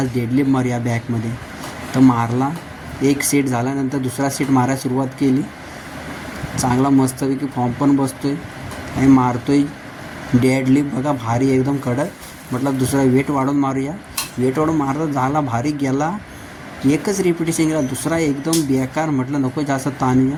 डेडलिफ्ट मारूया बॅकमध्ये. तर मारला, एक सेट झाल्यानंतर दुसरा सेट मारायला सुरुवात केली. चांगला मस्तपैकी फॉर्म पण बसतो आहे आणि मारतो आहे डेडलिफ्ट बघा, भारी एकदम कडक. म्हटलं दुसरा वेट वाढवून मारूया. वेट वाढून मारत झाला, भारी गेला. एकच रिपिटेशन गेला, दुसरा एकदम बेकार. म्हटलं नको जास्त ताणूया,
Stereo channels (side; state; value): both; identical; correlation 1.00